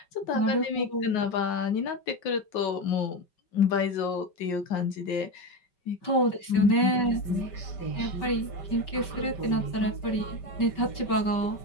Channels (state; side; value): late; right; 5.3 ms